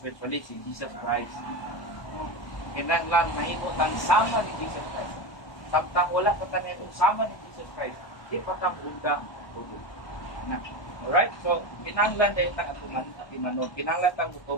si Jesus Christ. Kinahanglan mahimo tang sama ni Jesus Christ. Samtang wala pa ta nitong sama ni Jesus Christ, di pa ta undang tubo. Alright? So, kinahanglan dahil tang atong timanog. Kinahanglan tang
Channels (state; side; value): late; right; 1.2 ms